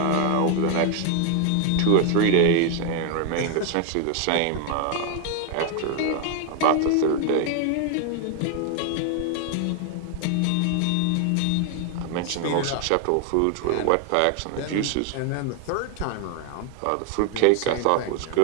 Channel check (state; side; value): different; both; correlation 0.01